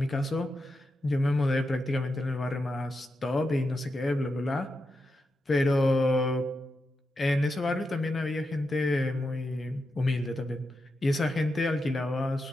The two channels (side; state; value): both; normal; correlation 0.87